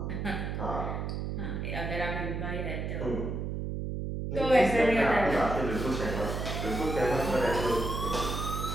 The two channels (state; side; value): noise; right; hum, 3 dB below the sound